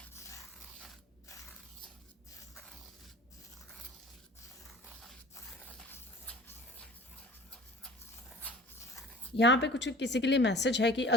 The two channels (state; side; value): normal; both; correlation 0.43